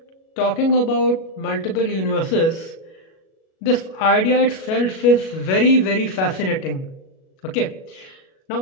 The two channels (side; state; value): right; late; 37 ms